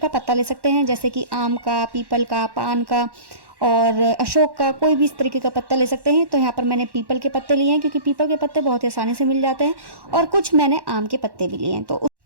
पत्ता ले सकते हैं, जैसे कि आम का, पीपल का, पान का और अशोक का, कोई भी इस तरीके का पत्ता ले सकते हैं। तो यहाँ पर मैंने पीपल के पत्ते लिए हैं, क्योंकि पीपल के पत्ते बहुत ही आसानी से मिल जाते हैं, और कुछ मैंने आम के पत्ते भी लिए हैं।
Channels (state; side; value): late; left; 1.1 ms